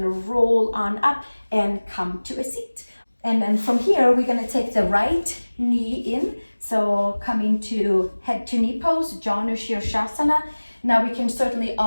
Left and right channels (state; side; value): inverted; both; correlation -1.00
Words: to roll on up and come to a seat. And then from here, we're going to take the right knee in. So coming to head to knee pose, Janu Shirshasana. Now we can certainly